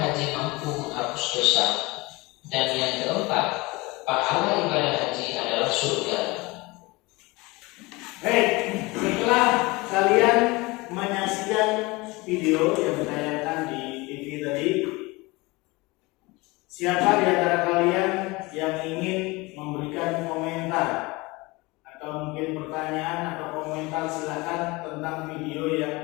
haji mampu menghapus dosa. Dan yang keempat, pahala ibadah haji adalah surga. Baik, setelah kalian menyaksikan video yang ditayangkan di TV tadi, siapa di antara kalian yang ingin memberikan komentar atau mungkin pertanyaan atau komentar, silakan, tentang video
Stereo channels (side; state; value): right; quieter; 23.6 dB